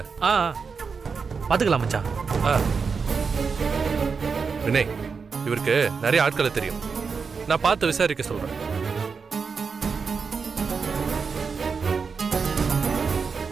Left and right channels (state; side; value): quieter; left; 5.4 dB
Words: பார்த்துக்கலாம் மச்சான். வினய், இவருக்கு நிறைய ஆட்களை தெரியும், நான் பார்த்து விசாரிக்க சொல்றேன்.